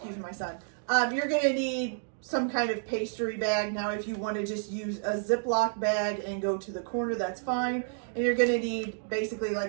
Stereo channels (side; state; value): left; silent; digital silence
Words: my son. You're going to need some kind of pastry bag. Now, if you want to just use a Ziploc bag and go to the corner, that's fine. And you're going to need basically